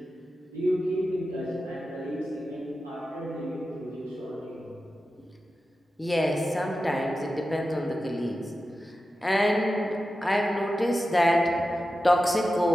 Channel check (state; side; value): normal; both; correlation 0.92